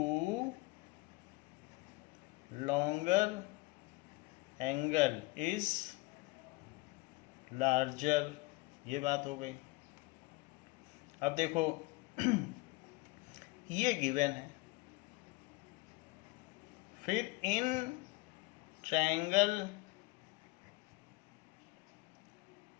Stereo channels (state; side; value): quieter; right; 23.6 dB